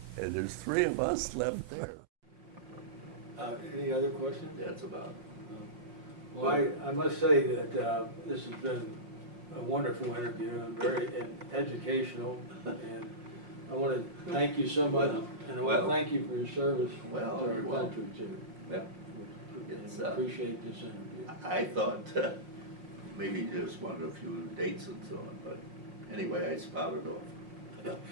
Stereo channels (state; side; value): late; left; 5.6 ms